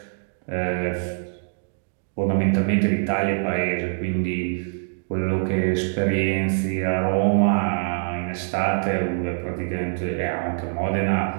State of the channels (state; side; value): silent; left; digital silence